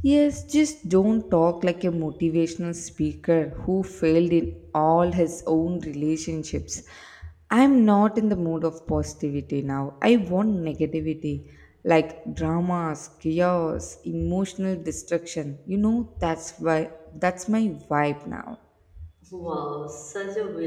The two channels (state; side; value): identical; both; correlation 1.00